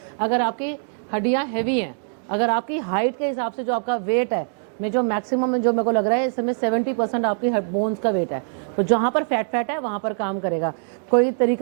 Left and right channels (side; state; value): left; silent; digital silence